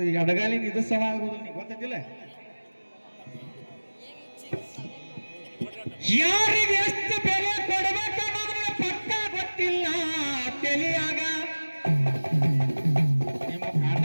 ಅಡಗಾಲಿನ ಇದು ಸಮ ಆಗೋದು ನೀ ಗೊತ್ತಿಲ್ಲ. ಯಾರಿಗೆ ಎಷ್ಟು ಬೆಲೆ ಕೊಡಬೇಕು ಅನ್ನೋದ್ರ ಪಕ್ಕ ಗೊತ್ತಿಲ್ಲ ತಿಳಿಯಾಗ. ನಿಮ್ಮ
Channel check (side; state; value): both; inverted; correlation -1.00